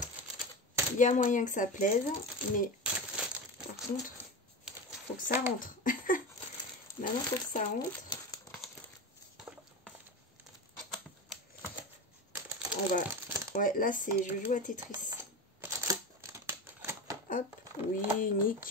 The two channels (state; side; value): normal; both; correlation 0.24